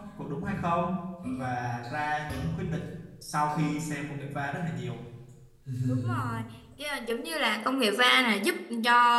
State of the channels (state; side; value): identical; both; correlation 1.00